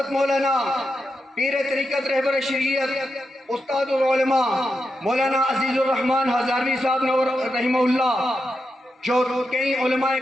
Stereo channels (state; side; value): normal; both; correlation 0.86